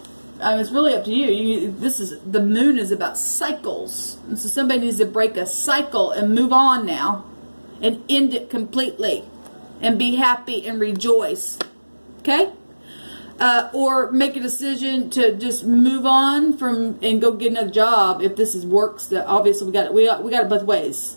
It's really up to you. This is, the moon is about cycles. And so somebody needs to break a cycle and move on now and end it completely and be happy and rejoice. Okay? Or make a decision to just move on from and go get another job if this is works. That obviously we got it both ways.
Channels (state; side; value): inverted; both; correlation -1.00